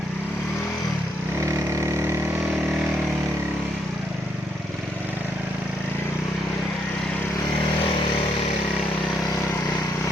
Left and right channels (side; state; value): both; normal; correlation 0.75